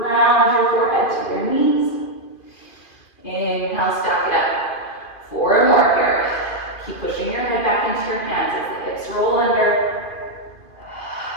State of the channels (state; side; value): late; right; 2.5 ms